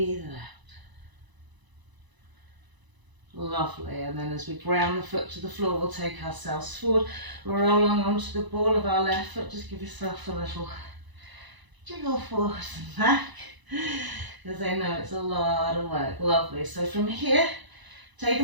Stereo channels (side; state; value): left; late; 1.0 ms